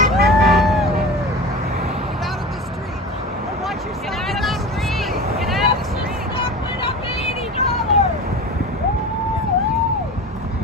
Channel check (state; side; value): normal; both; correlation 0.32